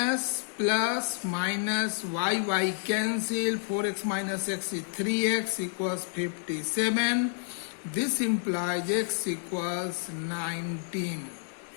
plus minus y cancel, 4x minus x is 3x equals 57. This implies x equals 19.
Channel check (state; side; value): silent; right; digital silence